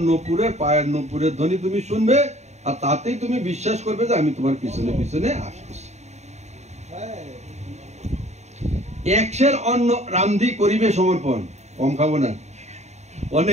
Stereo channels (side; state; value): left; late; 0.32 ms